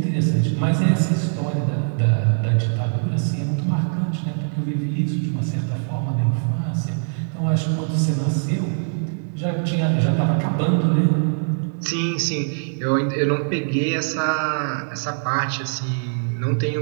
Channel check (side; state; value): left; silent; 64 dB below the other